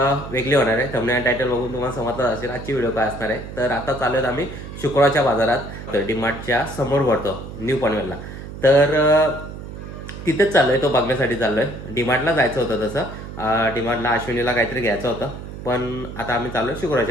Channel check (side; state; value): right; noise; hum, 11 dB below the sound